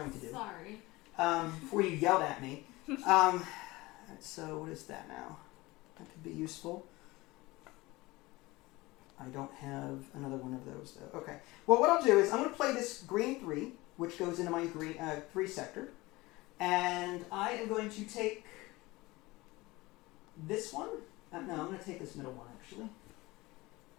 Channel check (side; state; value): right; quieter; 21.1 dB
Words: to do. Sorry. Before you yelled at me. So what is that now? That could be useful. I don't have another one of those though. Okay. Well, what I'll do is I'm going to play this green 3, which goes into my green 3 sector. And I am going to take this one. No, I'm going to take this middle one actually.